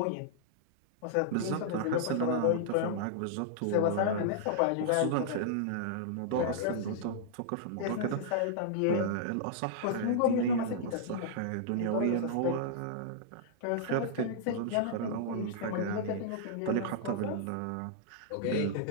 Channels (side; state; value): both; different; correlation -0.02